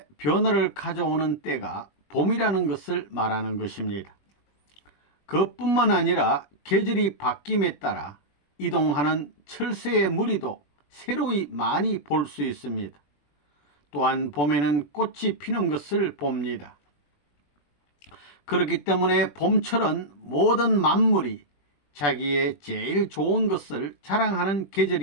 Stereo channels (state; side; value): late; right; 21 ms